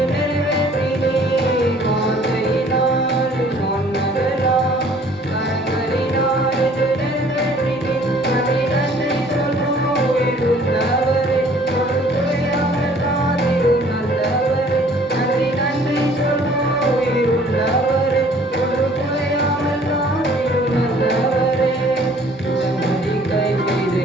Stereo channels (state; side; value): normal; both; correlation 0.55